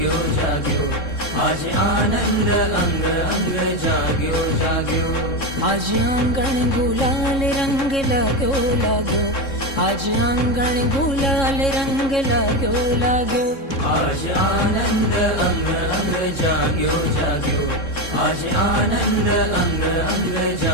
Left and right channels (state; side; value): late; right; 3.7 ms